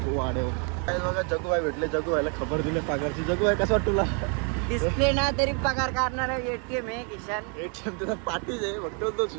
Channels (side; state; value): left; quieter; 38.1 dB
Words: वाढेव. काय बघा जग्गू भाई भेटले. जग्गू व्हायला खबर दिली पगारची. जग्गू भाई कसं वाटतं तुला? डिस्प्ले ना तरी पगार काढणार. एटीएम आहे किशन. एटीएम त्याचा पाठीच आहे. फक्त